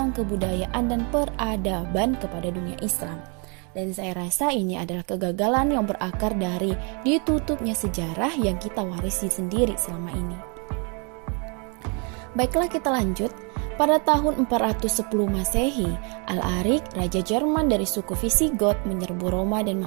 kebudayaan dan peradaban kepada dunia Islam. Dan saya rasa ini adalah kegagalan yang berakar dari ditutupnya sejarah yang kita warisi sendiri selama ini. Baiklah, kita lanjut. Pada tahun 410 Masehi, Alaric, Raja Jerman dari suku Visigoth, menyerbu Roma dan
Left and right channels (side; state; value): left; quieter; 35.2 dB